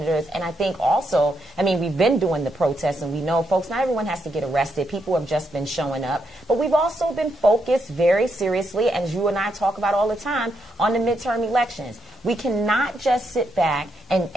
And I think also, I mean, we've been doing the protests, and we know, folks, not everyone has to get arrested. People have just been showing up. But we've also been focused very seriously, as you and I talk about all the time, on the midterm elections. We cannot just sit back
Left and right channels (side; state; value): both; normal; correlation 0.80